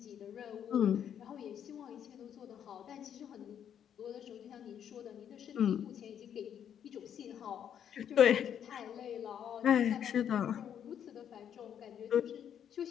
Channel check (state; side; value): quieter; right; 9.1 dB